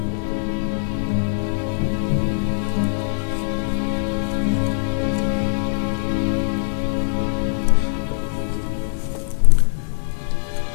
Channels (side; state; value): right; silent; 65 dB below the other